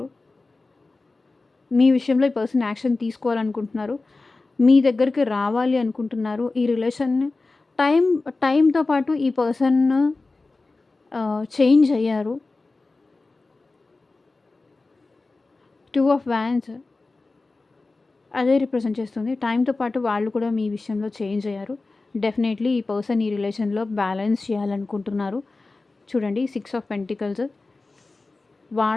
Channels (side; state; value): right; quieter; 3.5 dB